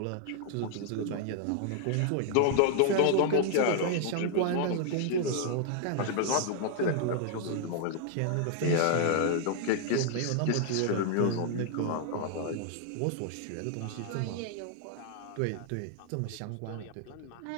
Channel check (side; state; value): both; different; correlation 0.00